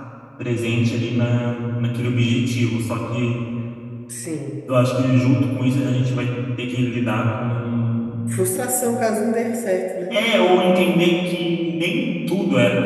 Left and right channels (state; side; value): identical; both; correlation 1.00